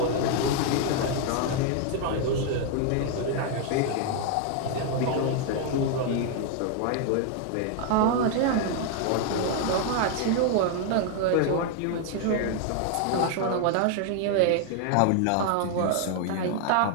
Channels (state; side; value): different; both; correlation 0.00